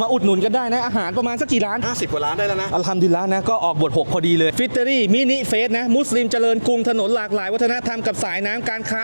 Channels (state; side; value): inverted; both; correlation -1.00